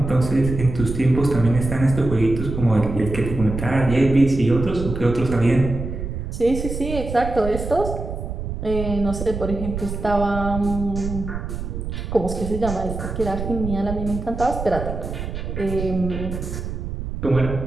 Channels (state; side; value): noise; right; rumble, 6 dB below the sound